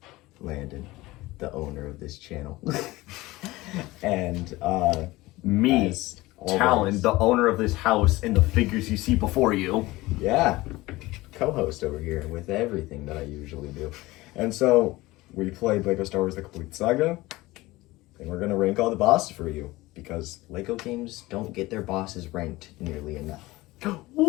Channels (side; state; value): right; quieter; 19.5 dB